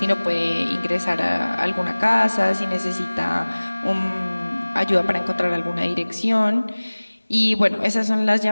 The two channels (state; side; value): inverted; both; correlation -1.00